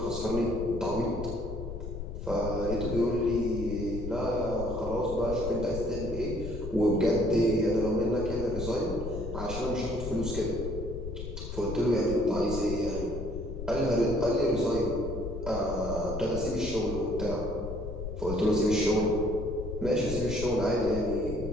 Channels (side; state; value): left; noise; rumble, 7 dB below the sound